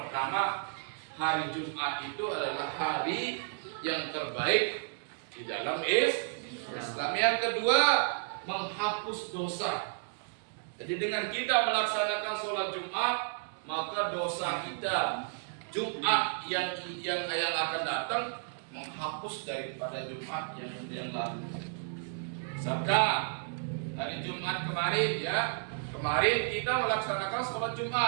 hari Jumat itu adalah hari yang terbaik di dalam Islam. Yang kedua, menghapus dosa. Jadi dengan kita melaksanakan sholat Jumat, maka dosa kita Jumat yang akan datang menghapus daripada Jumat yang lalu. Sabda dari Jumat kemarin, ya, kemarin kita melaksanakan sholat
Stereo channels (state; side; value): silent; left; digital silence